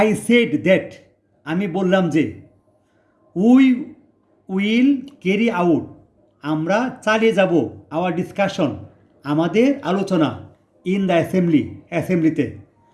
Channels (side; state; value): both; identical; correlation 1.00